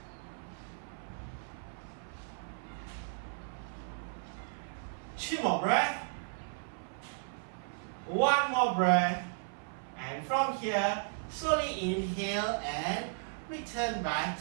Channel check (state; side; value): silent; left; 54 dB below the other